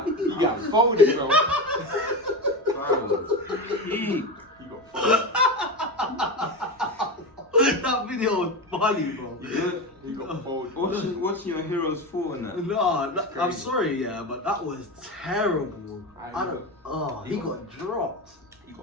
You got folded, bro. He You got folded. That video was funny, bro. You got folded. watching your heroes fall in that. No, I'm sorry, yeah, but that was terrible. He got- got dropped. You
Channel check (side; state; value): both; normal; correlation 0.20